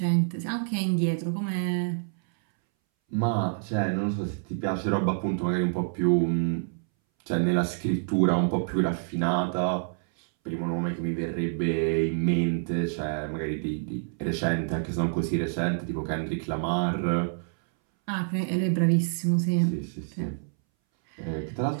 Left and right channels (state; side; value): silent; left; 60 dB below the other